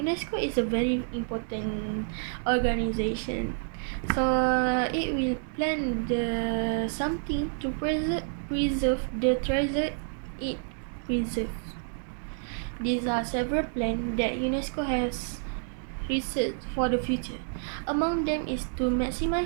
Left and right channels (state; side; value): silent; left; digital silence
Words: is a very important organization. So it will plan the something to preserve the treasure it preserves. These are several plans that UNESCO has researched for the future. Among them is to